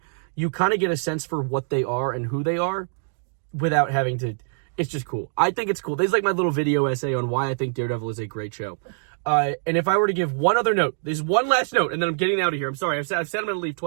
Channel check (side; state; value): left; silent; digital silence